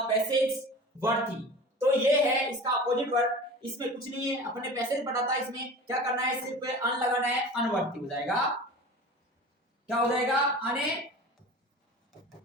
passage worthy. तो ये है इसका अपोजिट वर्ड। इसमें कुछ नहीं है, अपने पैसेज पढ़ा था, इसमें क्या करना है? सिर्फ अन लगाना है, अनवर्थी हो जाएगा। क्या हो जाएगा? अने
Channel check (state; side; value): normal; both; correlation 0.37